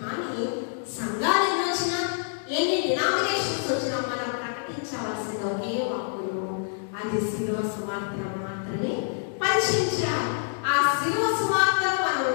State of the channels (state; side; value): silent; right; digital silence